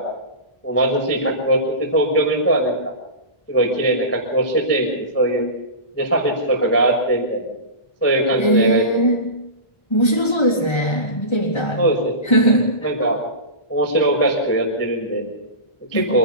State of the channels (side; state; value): right; late; 1.3 ms